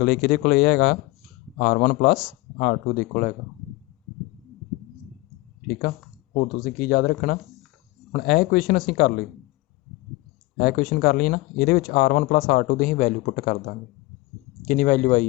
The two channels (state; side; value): quieter; right; 21.1 dB